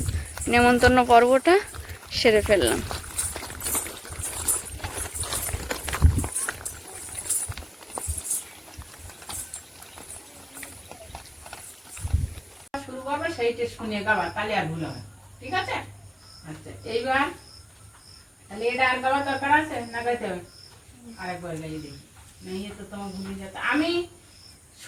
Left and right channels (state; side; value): identical; both; correlation 1.00